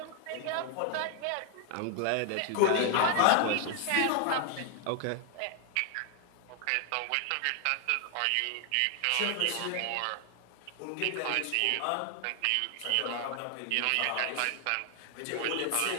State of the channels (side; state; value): both; different; correlation 0.00